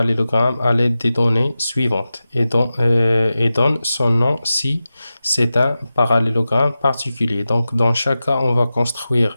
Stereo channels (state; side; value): inverted; both; correlation -0.93